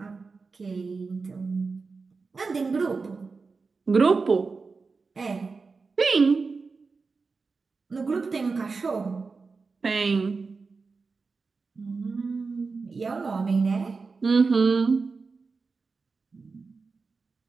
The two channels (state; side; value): quieter; left; 4.4 dB